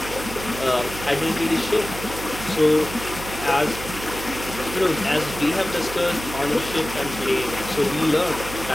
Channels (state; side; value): noise; right; hum, 10 dB below the sound